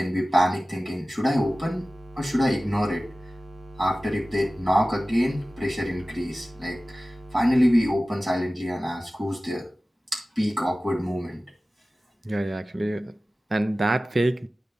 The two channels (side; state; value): both; normal; correlation 0.96